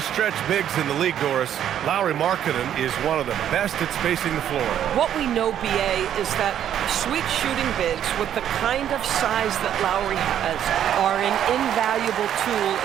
stretch bigs in the league, Doris. Lauri Markkanen is one of the best at spacing the floor. What we know, BA, is that sweet shooting bigs with the kind of size that Lauri has are an invaluable tool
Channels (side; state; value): left; quieter; 10.2 dB